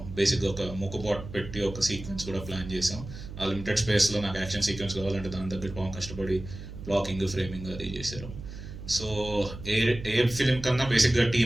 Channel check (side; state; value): right; noise; hum, 12 dB below the sound